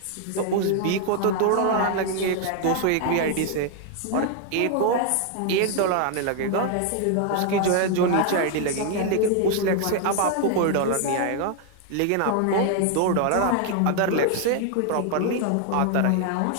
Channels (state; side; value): different; both; correlation 0.00